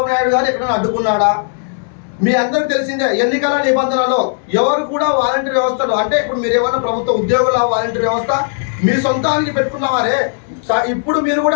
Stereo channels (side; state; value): right; silent; digital silence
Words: నాయుడు గారు ఎక్కడైనా అడ్డుకున్నాడా? మీ అందరికి తెలిసిందే, ఎన్నికల నిబంధనలో ఎవరు కూడా వాలంటీర్ వ్యవస్థలు అంటే ఇప్పుడు మీరు ఏమన్నా ప్రభుత్వ ఉద్యోగుల వాలంటీర్ వ్యవస్థ మీ సొంతానికి పెట్టుకున్నవారే. ఇప్పుడు మీరు